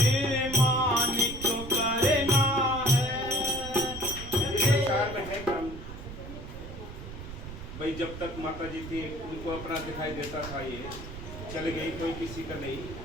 मानिक करना है। इस संसार में है कम भाई, जब तक माता जी थी उनको अपना दिखाई देता था, ये चल गई, कोई किसी का नहीं।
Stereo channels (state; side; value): noise; right; rumble, 11 dB below the sound